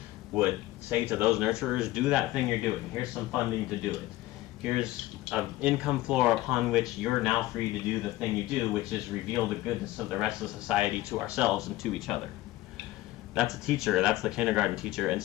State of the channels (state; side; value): quieter; right; 17.0 dB